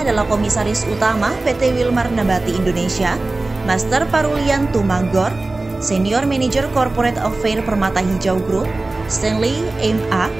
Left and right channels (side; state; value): left; quieter; 3.1 dB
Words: adalah Komisaris Utama PT Wilmar Nabati Indonesia, Master Parulian Tumanggor, Senior Manager Corporate Affairs Permata Hijau Group, Stanley M.A.,